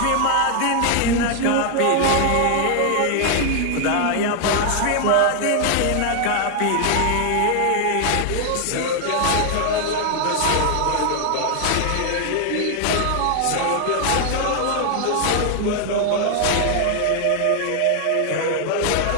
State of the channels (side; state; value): both; different; correlation 0.00